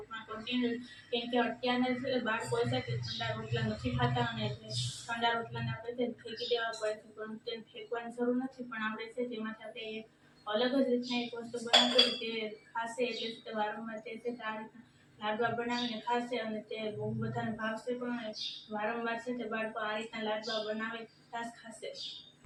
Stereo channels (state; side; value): identical; both; correlation 1.00